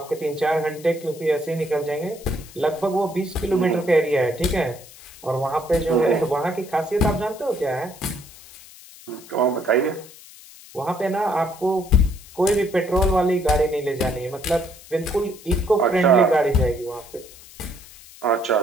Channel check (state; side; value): noise; left; hiss, 20 dB below the sound